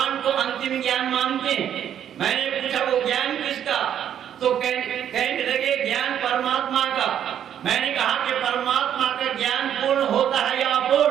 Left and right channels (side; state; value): left; quieter; 9.7 dB